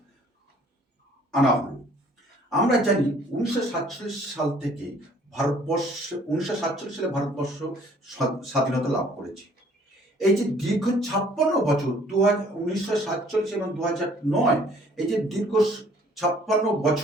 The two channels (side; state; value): both; normal; correlation 0.58